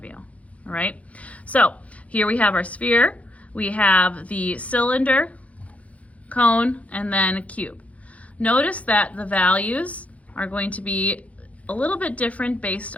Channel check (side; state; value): right; late; 0.066 ms